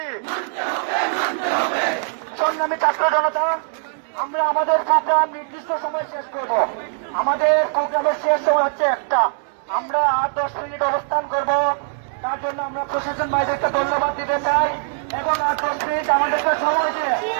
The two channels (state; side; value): silent; left; digital silence